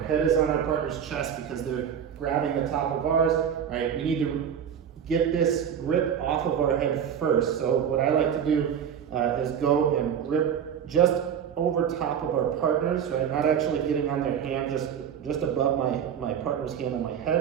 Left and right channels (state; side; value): quieter; left; 8.3 dB